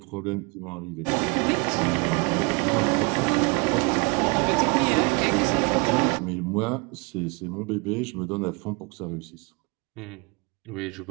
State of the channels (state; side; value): quieter; left; 30.4 dB